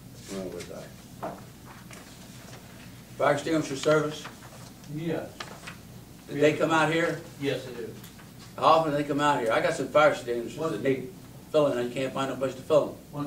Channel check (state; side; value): identical; both; correlation 1.00